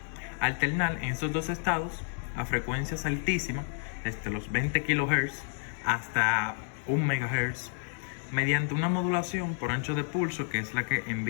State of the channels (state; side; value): silent; right; 56 dB below the other